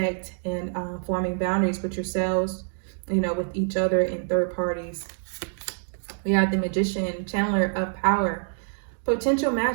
and forming boundaries with yourselves, you know, with each other and third parties. We have the magician, channeler of power, potential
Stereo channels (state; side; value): silent; left; digital silence